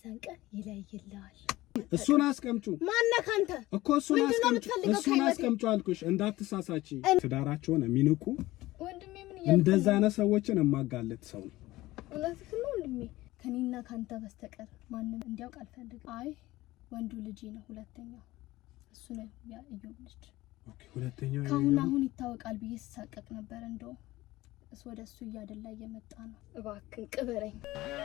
ዘንቀን ይለይልሃል። እሱን አስቀምጩ። ማነህ አንተ እኮ እሱን አስቀምጩ አልኩሽ። እንዳትሳሳቺ። ትዳራቸውን የሚንቁ ወንድሜ ምን ይያል እንደዛ አይነት ሰዎችን ማጋለጥ ሰው ነው። እውነትህ ነው ወንድሜ። ከኔና ካንተ በስተቀር ማንንም እንዲያውቅ አልፈልግም። አይ ወንዱ ልጅ ነው ሁለተኛው እሱ ነው ያ እዮብ ልጅ። ኦኬ ሁለተኛው አሁን ይታወቃል ብዬ ተሳቀቅ ነበር። እንደው እሱ ወደሱ እያደላ እየመጣ ነው። እባክህ ቅበረኝ።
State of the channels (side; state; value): right; quieter; 17.9 dB